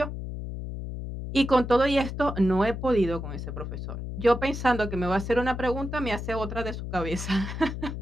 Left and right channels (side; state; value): left; noise; hum, 6 dB below the sound